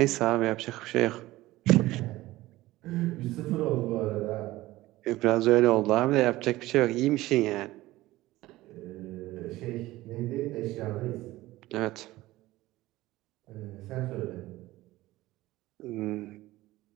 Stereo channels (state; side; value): quieter; left; 17.5 dB